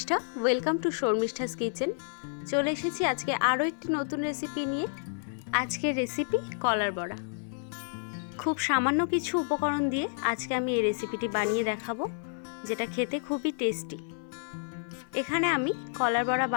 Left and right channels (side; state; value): right; silent; 58 dB below the other